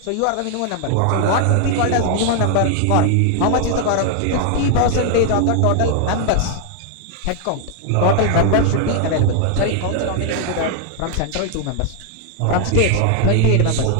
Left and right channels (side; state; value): both; different; correlation 0.00